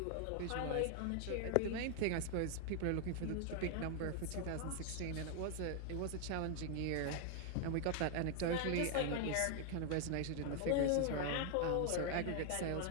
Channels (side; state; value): both; different; correlation 0.00